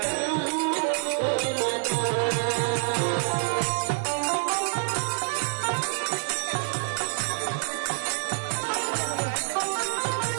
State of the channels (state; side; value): silent; left; 60 dB below the other